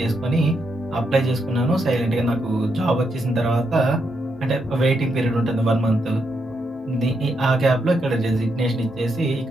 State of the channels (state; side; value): normal; both; correlation 0.80